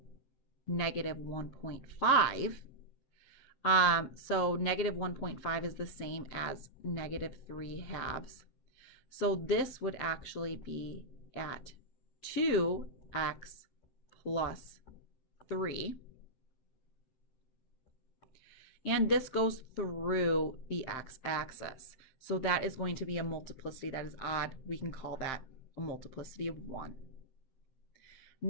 -1.5. So -1.5 is the same as -3/2. So this would actually be at 2x plus 3. And this goes through the x-axis. So that is going to be a multiplicity that is odd. We can call that a multiplicity of 1.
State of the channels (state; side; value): late; right; 7.6 ms